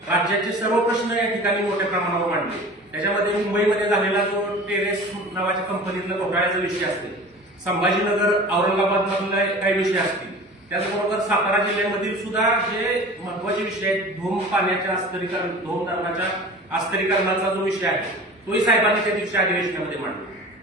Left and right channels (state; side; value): normal; both; correlation 0.39